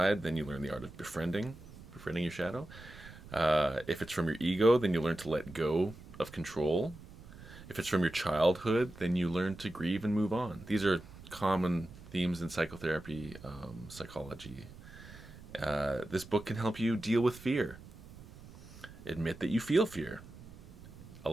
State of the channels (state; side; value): noise; right; rumble, 18 dB below the sound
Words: then you learn the art of befriending your shadow. If it's from your ego, then you learn to let go of control. If it's from your childhood, then you learn to grieve and move on. These are common themes in psychotherapy, psychology. This book can help you deal with fear. Admit that you feel fear.